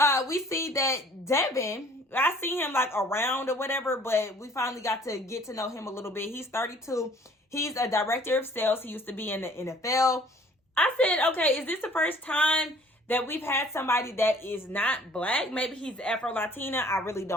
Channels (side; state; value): both; normal; correlation 0.54